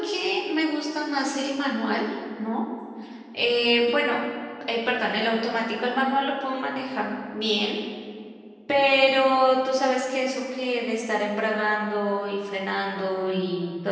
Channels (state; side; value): identical; both; correlation 1.00